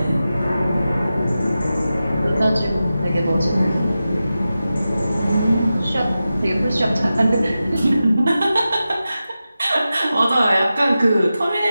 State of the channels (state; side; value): inverted; both; correlation -0.93